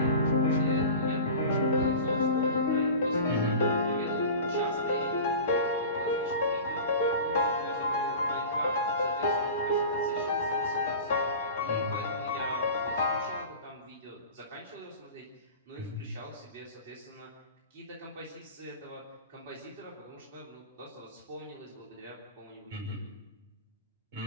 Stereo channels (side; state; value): both; inverted; correlation -0.35